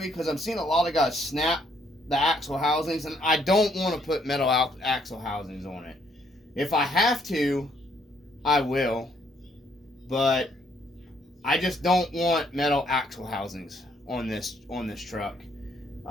because I'm seeing a lot of guys snap the axle housings, and I don't want to put metal axle housings on it. If I have to, I will, but I just don't want metal axle housings on this truck.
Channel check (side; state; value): both; normal; correlation 0.69